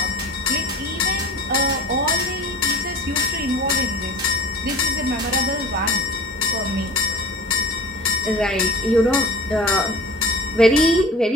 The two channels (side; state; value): both; normal; correlation 0.39